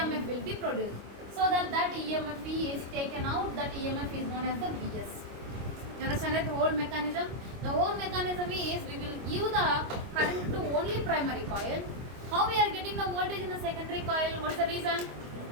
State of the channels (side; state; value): left; late; 25 ms